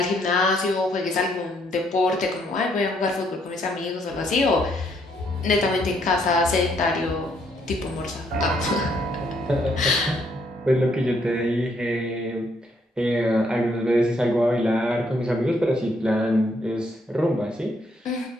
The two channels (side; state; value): both; normal; correlation 0.70